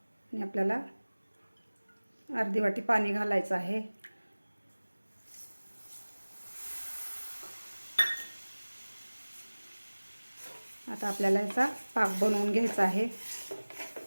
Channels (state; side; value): inverted; both; correlation -1.00